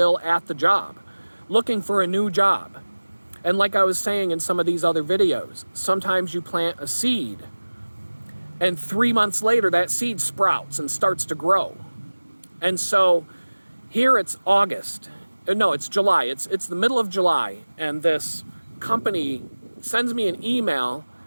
at the job, looking for a new job. And like I was saying in some of these other videos, sometimes you plant a seed and 3 months later that seed sprouts and starts to grow. And so here it's August. No, it's July. It's the middle of July. And this company sends me an email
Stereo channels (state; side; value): inverted; both; correlation -1.00